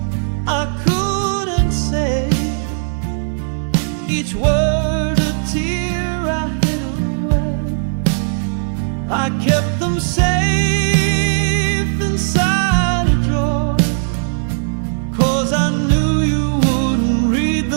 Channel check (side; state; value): left; silent; 58 dB below the other